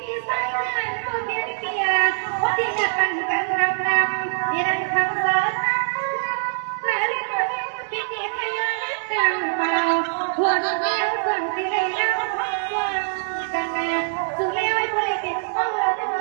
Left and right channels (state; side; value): silent; left; 63 dB below the other